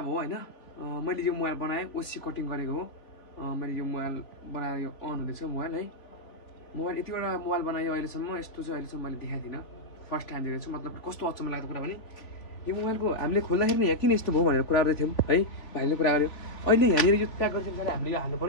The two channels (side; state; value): right; late; 3.5 ms